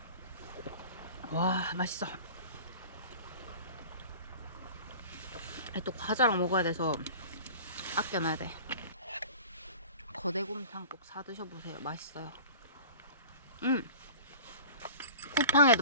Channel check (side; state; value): both; inverted; correlation -0.39